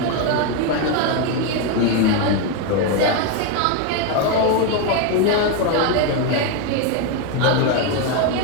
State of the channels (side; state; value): both; different; correlation 0.02